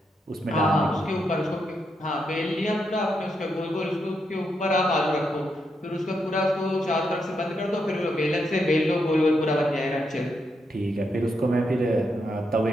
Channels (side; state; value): both; normal; correlation 0.81